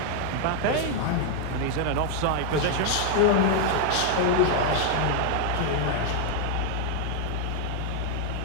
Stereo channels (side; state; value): both; different; correlation 0.00